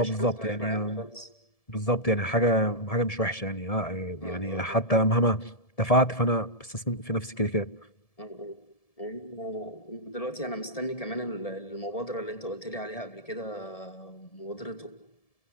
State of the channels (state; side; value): late; right; 1.7 ms